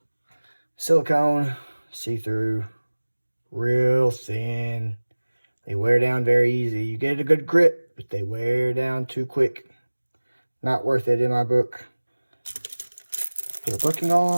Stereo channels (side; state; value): both; inverted; correlation -1.00